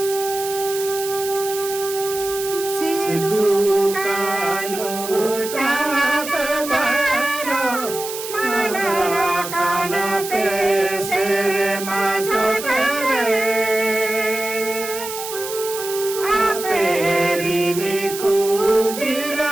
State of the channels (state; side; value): noise; right; hiss, 8 dB below the sound